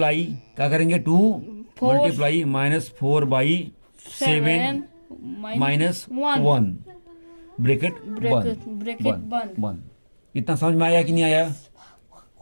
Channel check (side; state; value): both; inverted; correlation -1.00